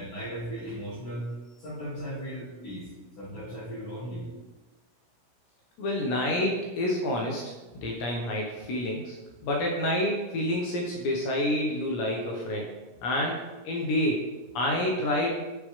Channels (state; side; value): late; right; 17 ms